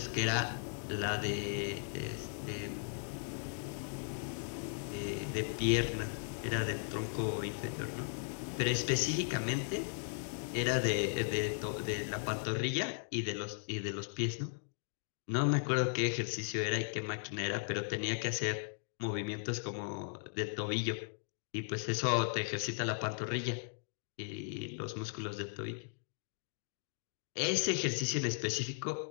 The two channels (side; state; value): right; silent; digital silence